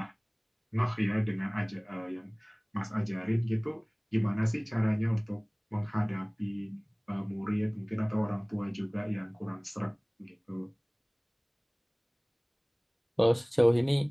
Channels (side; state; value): both; identical; correlation 1.00